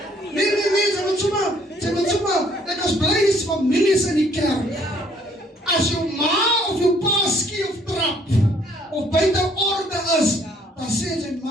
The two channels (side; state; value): both; normal; correlation 0.63